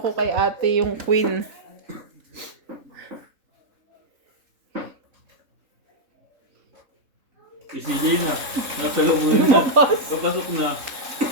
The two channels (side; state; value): left; late; 3.6 ms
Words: kay ate yung queen. Si CJ na. Nasa loob na. Papasok na.